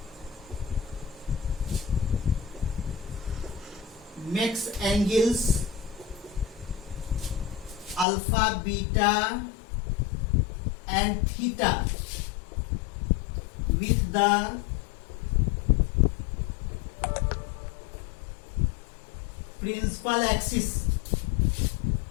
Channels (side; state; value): right; drops out; at 8.1 s